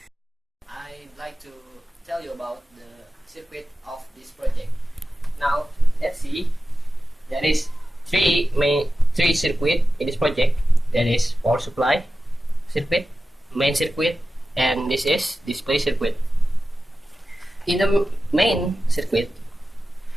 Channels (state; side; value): normal; both; correlation 0.94